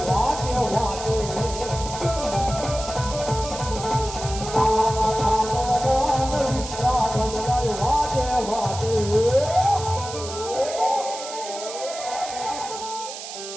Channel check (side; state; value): right; noise; hiss, 10 dB below the sound